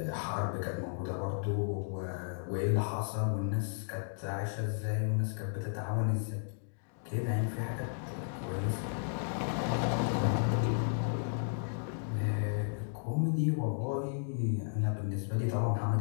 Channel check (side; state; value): right; silent; digital silence